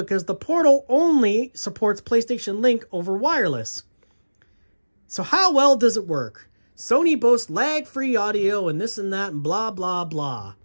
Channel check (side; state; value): both; inverted; correlation -1.00